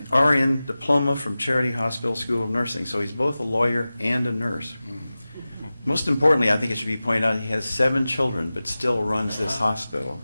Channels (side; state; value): both; inverted; correlation -0.96